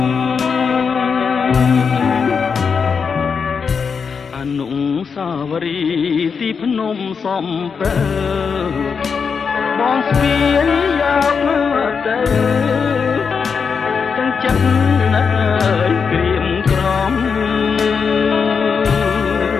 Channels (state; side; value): quieter; right; 5.9 dB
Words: អនុសាវរីយ៍ទីភ្នំសំពើបងស្ពាយយកមកទៅទាំងចិត្តណាស់ក្រៀមក្រំ